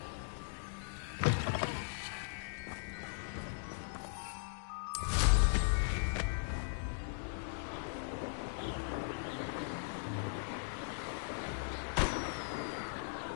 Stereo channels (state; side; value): silent; right; digital silence